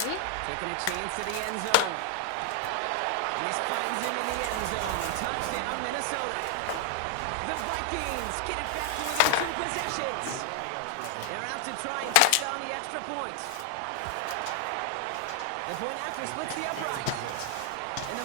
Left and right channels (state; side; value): different; both; correlation 0.00